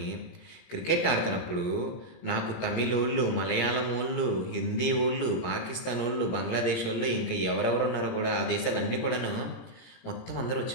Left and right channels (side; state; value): right; late; 17 ms